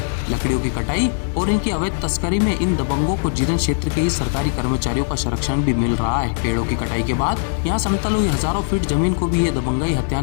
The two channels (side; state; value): right; silent; digital silence